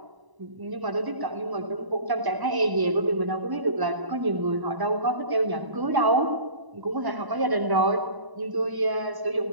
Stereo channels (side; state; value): left; late; 1.0 ms